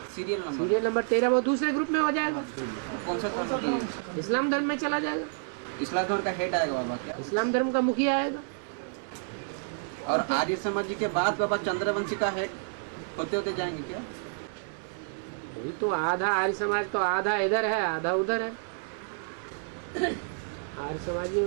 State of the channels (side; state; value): left; silent; 58 dB below the other